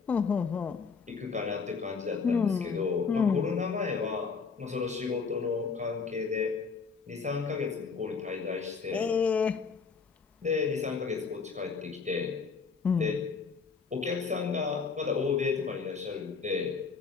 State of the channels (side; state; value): right; quieter; 5.3 dB